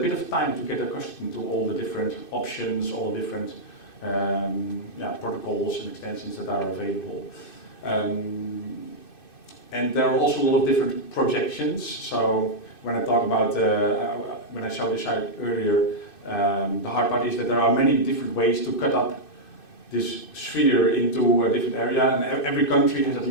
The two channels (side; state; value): right; late; 2.6 ms